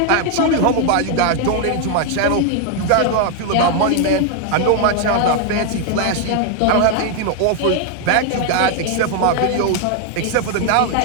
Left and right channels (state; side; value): different; both; correlation 0.01